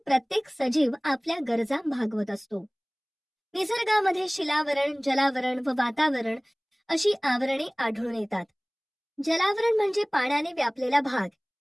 सजीव आपल्या गरजा भागवत असतो. निसर्गामध्ये शिलावरण, जलावरण व वातावरण अशी आवरणे आढळून येतात. जलावरण म्हणजे पाण्याने व्यापलेला भाग.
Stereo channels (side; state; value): both; identical; correlation 1.00